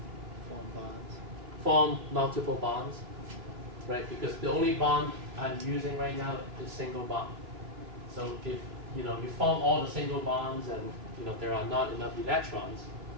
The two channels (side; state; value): left; late; 3.0 ms